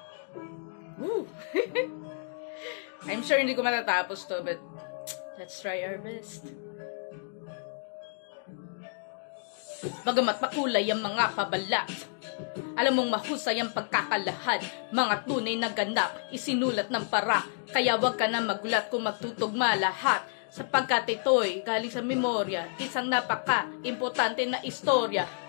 Woo! I'm sure hindi ko matatapos to, but let's try our best. Bagamat makulay ang mga pabalat, alam mong mahusay ang pagkakalahad, mga tunay na ganap, isinulat ng para. Kaya wag ka na magulat kung magtutugma lahat, sapagkat ito'y galing sa memorya, isang napaka-importante na istorya.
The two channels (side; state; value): right; silent; digital silence